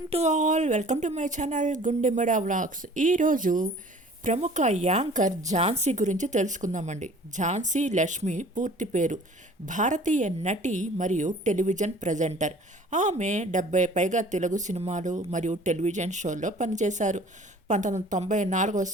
to all. Welcome to my channel గుండెమడ vlogs. ఈరోజు ప్రముఖ anchor Jhansi గురించి తెలుసుకుందామండి. ఝాన్సీ లక్ష్మి పూర్తి పేరు. భారతీయ నటి మరియు టెలివిజన్ ప్రజెంటర్. ఆమె 70 పైగా తెలుగు సినిమాలు మరియు టెలివిజన్ షోల్లో పనిచేశారు. 1994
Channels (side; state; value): both; normal; correlation 0.49